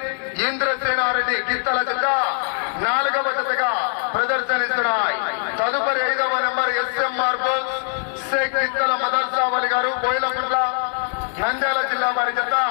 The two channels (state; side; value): silent; right; digital silence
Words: ఇంద్రసేనారెడ్డి గిత్తల జత 4వ జతగా ప్రదర్శనిస్తున్నాయి. తదుపరి 5వ నెంబర్ ఎస్ఎం మార్బల్ షేక్ గిత్తల మదర్సావలి గారు బోయిలపుండ్ల నంద్యాల జిల్లా వారి జత